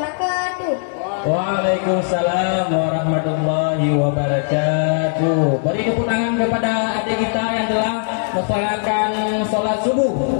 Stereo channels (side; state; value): right; silent; digital silence